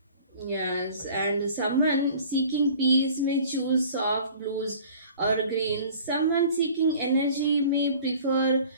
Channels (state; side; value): inverted; both; correlation -0.47